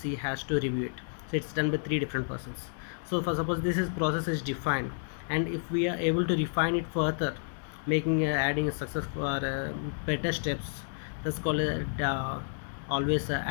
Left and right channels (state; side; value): silent; right; digital silence